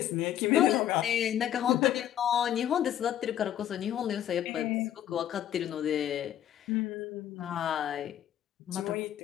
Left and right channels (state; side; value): quieter; right; 11.1 dB